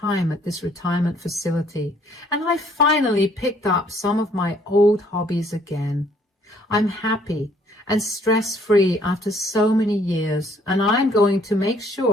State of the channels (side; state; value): both; normal; correlation 0.63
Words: at this retirement facility, and I finally picked up some of my old hobbies again. I'm happy and stress-free after so many years, and I'm going to make